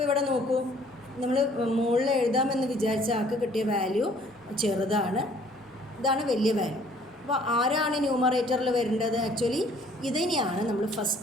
ഇവിടെ നോക്കൂ, നമ്മൾ മുകളിൽ എഴുതാമെന്ന് വിചാരിച്ച ആൾക്ക് കിട്ടിയ വാല്യൂ ചെറുതാണ്, ഇതാണ് വലിയ വാല്യൂ. അപ്പോൾ ആരാണ് ന്യൂമറേറ്ററിൽ വരേണ്ടത്? ആക്ച്വലി ഇതിനെയാണ് നമ്മൾ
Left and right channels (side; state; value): both; normal; correlation 0.58